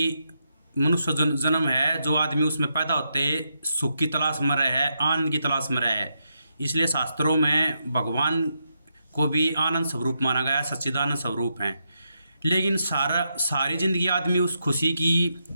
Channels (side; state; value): both; inverted; correlation -0.83